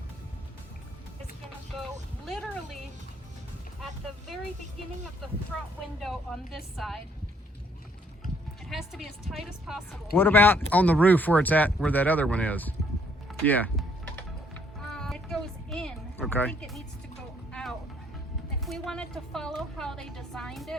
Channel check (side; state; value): both; normal; correlation 0.66